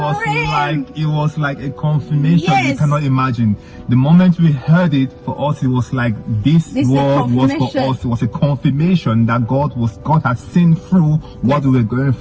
was like a confirmation. Yes. You cannot imagine. The moment we heard it, for us, it was like this word was for us. It was a confirmation that God had seen through what we were going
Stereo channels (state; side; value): identical; both; correlation 1.00